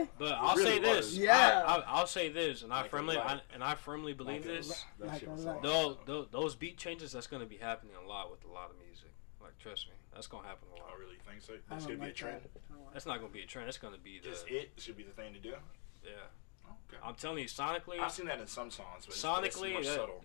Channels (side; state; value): right; quieter; 39.6 dB